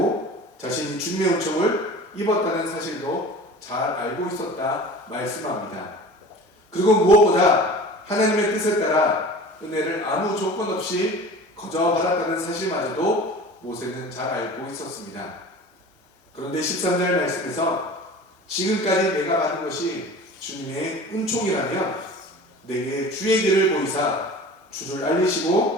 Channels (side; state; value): both; normal; correlation 0.39